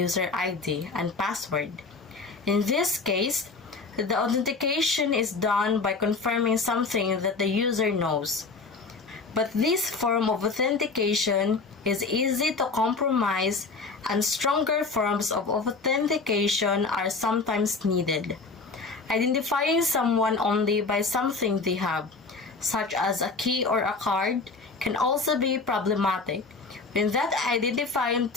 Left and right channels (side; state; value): right; quieter; 4.1 dB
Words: ID and password. In this case, the authentication is done by confirming something that the user knows. But this form of authentication is easy to compromise, and stronger forms of authentication are sometimes needed. Identifying someone only by something they have, such as a key or a card, can also be problematic. When that identifying